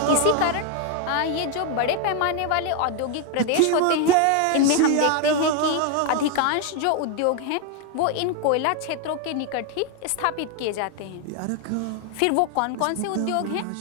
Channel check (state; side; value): different; both; correlation 0.01